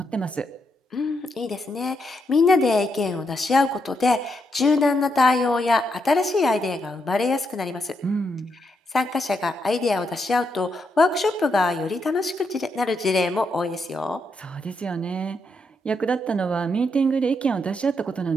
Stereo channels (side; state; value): both; normal; correlation 0.80